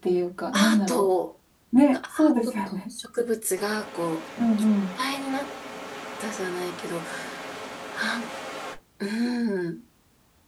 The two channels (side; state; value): both; identical; correlation 1.00